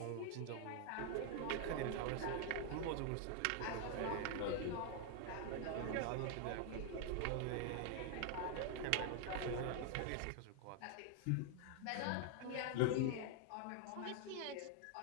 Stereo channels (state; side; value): different; both; correlation 0.00